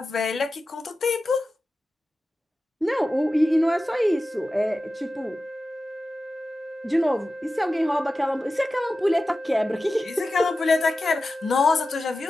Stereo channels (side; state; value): both; normal; correlation 0.93